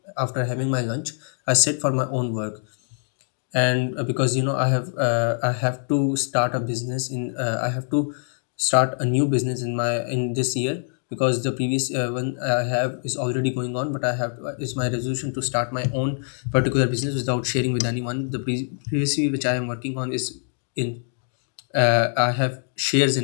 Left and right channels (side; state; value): right; silent; 62 dB below the other